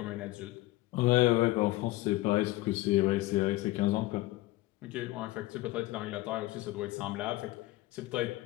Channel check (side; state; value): right; quieter; 18.5 dB